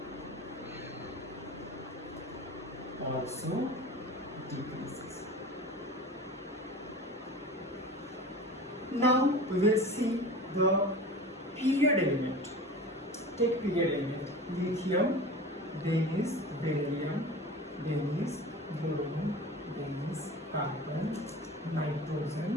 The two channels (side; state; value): both; normal; correlation 0.35